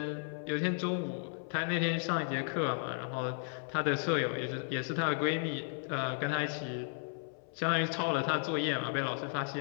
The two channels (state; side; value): silent; right; 55 dB below the other